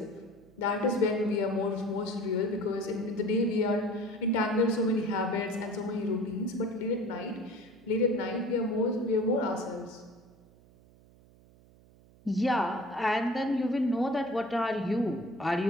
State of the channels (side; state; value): right; noise; hum, 26 dB below the sound